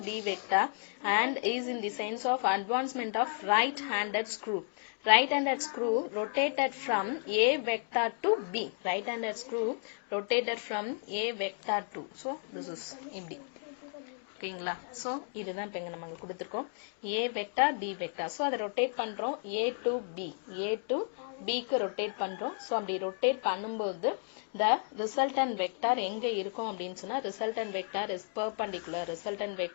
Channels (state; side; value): silent; right; 56 dB below the other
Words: B vector and is in the sense of advancement of right-handed screw. Right-handed screw rotated from A vector to B. Right-handed screw rotated from A vector to. So this is empty. ஓகேங்களா? So இதுதான் இப்போ இங்கே நமக்கு கொடுத்துருக்கோம் A vector, B vector. So அதை rotate பண்ணுறோம் A to Bக்கு rotate பண்ணுறோம். ஸோ அப்படி ரொட்டேட் பண்ணும்போது the resultant vector எங்க இருக்கும் அப்படின்னு சொன்னா, resultant vector is perpendicular.